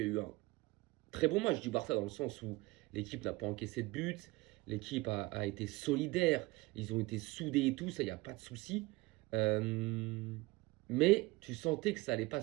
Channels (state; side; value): quieter; left; 21.5 dB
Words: eu un très bon match du Barça dans le sens où l'équipe n'a pas encaissé de but, l'équipe a été solidaire, ils ont été soudés et tout, ça, il n'y a pas de souci. Mais tu sentais que ça n'allait pas